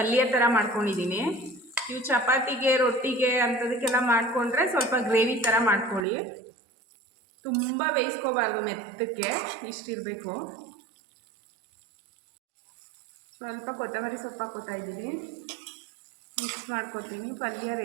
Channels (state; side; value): drops out; left; at 6.1 s